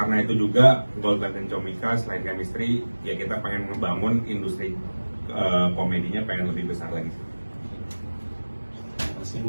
itu juga GoldLife dan Comika selain chemistry ya kita pengen membangun industri komedinya pengen lebih besar lagi.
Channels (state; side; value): inverted; both; correlation -1.00